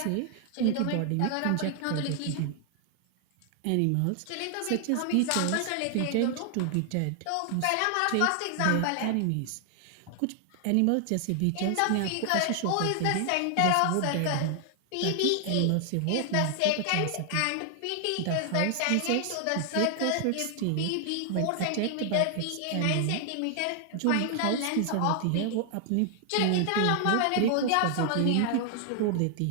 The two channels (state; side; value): different; both; correlation 0.00